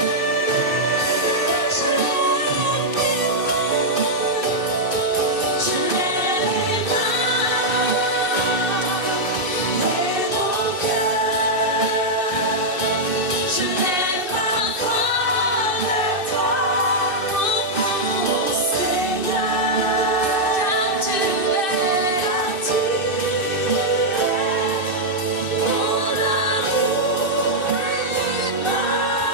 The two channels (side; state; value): right; late; 2.6 ms